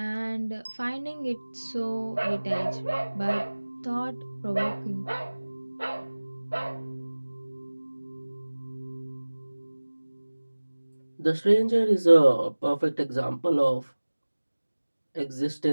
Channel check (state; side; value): inverted; both; correlation -1.00